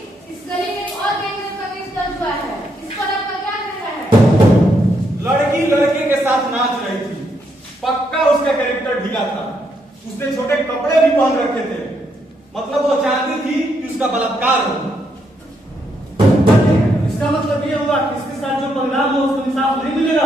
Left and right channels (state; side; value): normal; both; correlation 0.77